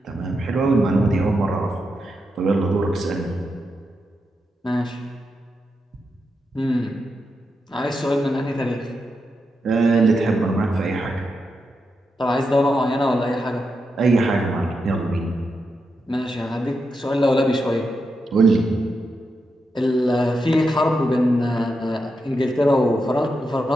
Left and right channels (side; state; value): both; normal; correlation 0.86